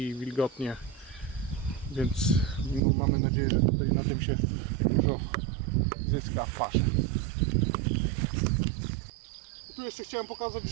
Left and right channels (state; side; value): drops out; left; at 2.8 s